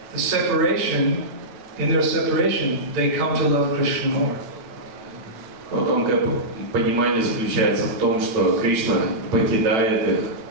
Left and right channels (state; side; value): late; left; 8.9 ms